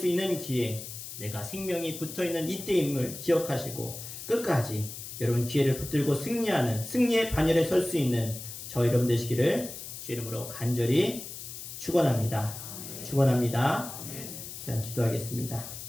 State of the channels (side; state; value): left; noise; hiss, 10 dB below the sound